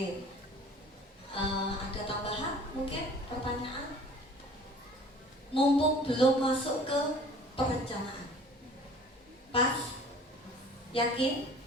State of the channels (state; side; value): normal; both; correlation 0.48